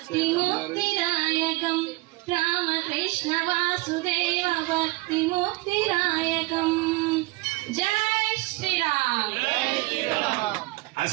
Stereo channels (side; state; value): left; quieter; 22.5 dB